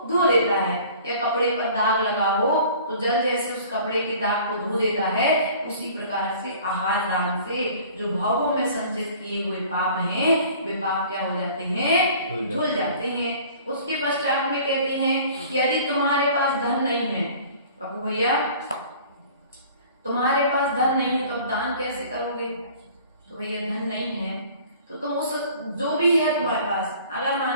धो लेता है, या कपड़े पर दाग लगा हो तो जल जैसे उस कपड़े के दाग को धो देता है, उसी प्रकार से आहार दान से जो भावों में संचित किए हुए पाप हैं वे पाप क्या हो जाते हैं, धुल जाते हैं। उसके पश्चात में कहती हैं कि यदि तुम्हारे पास धन नहीं है, बाबू भैया तुम्हारे पास धन नहीं है तो अब दान कैसे करोगे? तो भैया धन नहीं है तो तुम उस जो भी है तुम्हारे पास, अगर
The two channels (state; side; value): inverted; both; correlation -0.48